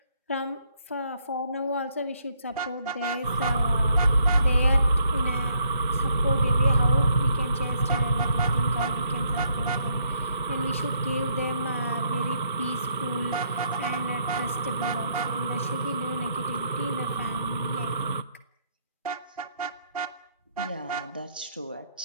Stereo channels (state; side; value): inverted; both; correlation -0.71